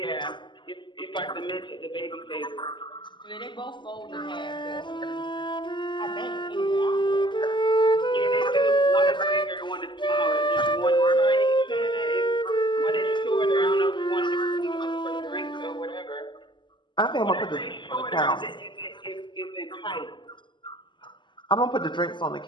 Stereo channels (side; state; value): right; late; 0.22 ms